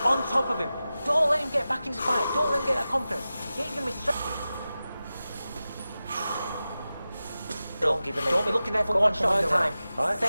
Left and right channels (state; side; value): inverted; both; correlation -0.94